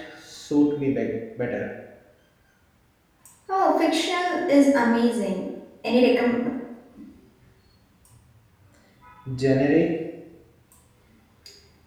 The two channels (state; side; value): identical; both; correlation 1.00